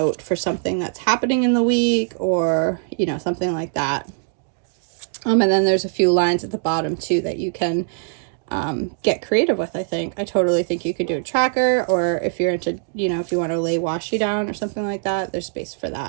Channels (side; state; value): left; silent; digital silence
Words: for something that's happening in the week or, you know, something like that. And then there's a few lines at the bottom too that you can get creative with. I totally think you could do a tracker, or if you're into, you know, if you want to lay washi down or something like that, there's space for